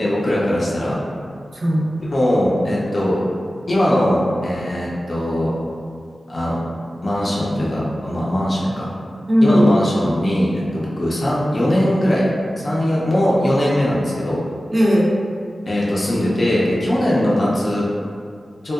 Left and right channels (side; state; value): both; normal; correlation 0.95